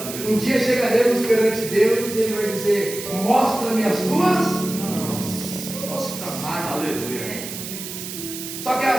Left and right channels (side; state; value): right; noise; hiss, 9 dB below the sound